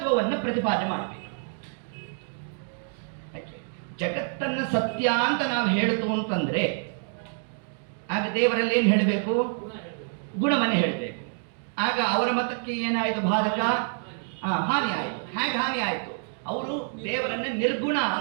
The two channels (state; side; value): silent; left; 60 dB below the other